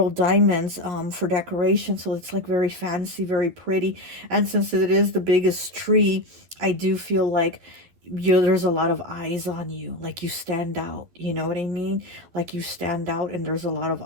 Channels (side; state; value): left; late; 12 ms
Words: diamonds for decoration. So it's like very fancy, very pretty. And since it is the biggest tree, I do feel like there's a lot of eyes on you, like you stand out, you know what I mean? Like you stand out and there's a lot of